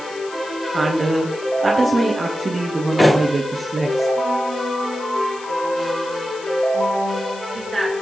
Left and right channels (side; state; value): left; noise; hiss, 18 dB below the sound